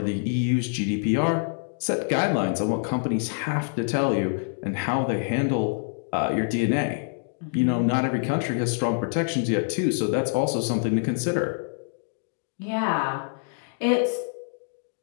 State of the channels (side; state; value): right; silent; digital silence